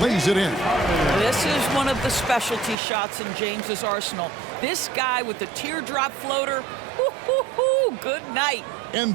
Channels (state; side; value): drops out; left; at 2.8 s